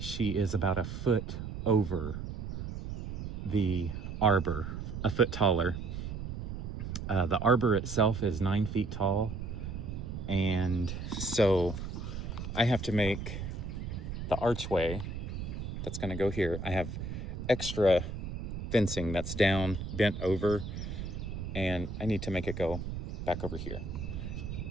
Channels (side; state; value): right; noise; rumble, 6 dB below the sound